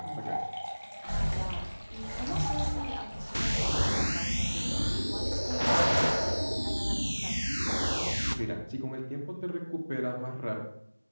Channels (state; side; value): inverted; both; correlation -1.00